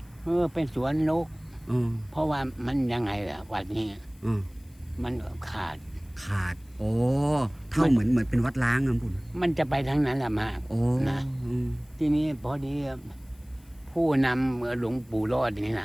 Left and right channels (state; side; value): noise; left; hiss, 30 dB below the sound